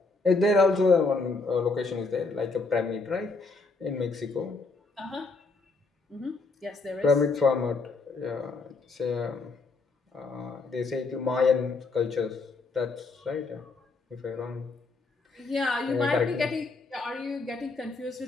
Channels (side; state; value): right; quieter; 3.8 dB